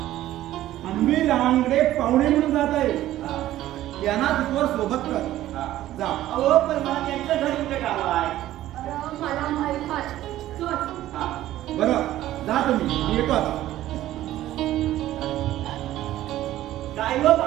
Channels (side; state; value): left; quieter; 14.1 dB